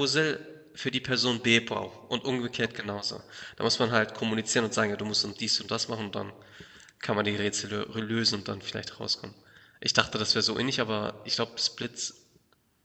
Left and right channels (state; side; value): identical; both; correlation 1.00